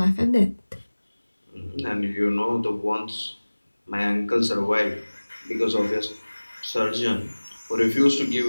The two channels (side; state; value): both; inverted; correlation -1.00